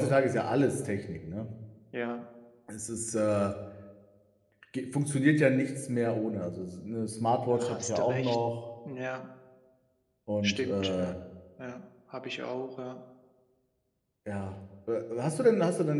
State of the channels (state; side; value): identical; both; correlation 1.00